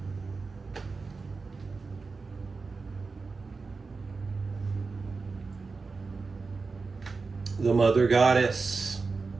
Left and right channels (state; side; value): quieter; left; 4.3 dB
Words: The mother goddess